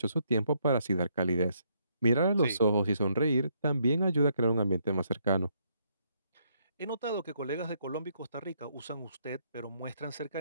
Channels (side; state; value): both; inverted; correlation -0.73